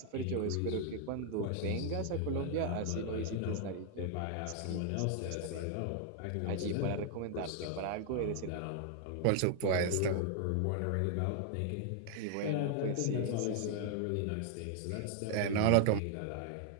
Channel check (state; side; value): different; both; correlation 0.00